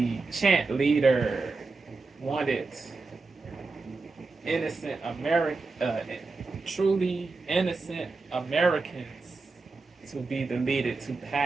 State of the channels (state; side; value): quieter; left; 3.9 dB